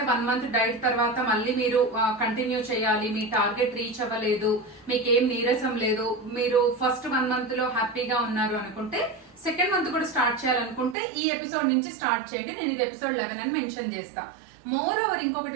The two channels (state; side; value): drops out; left; at 11.0 s